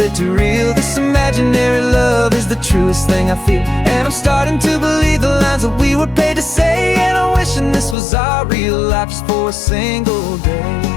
too real. This imaginary love is the truest thing I feel. And I'm starting to believe the lines that we were paid to say. And I'm wishing this was our real life just for a single day.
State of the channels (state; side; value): drops out; right; at 8.0 s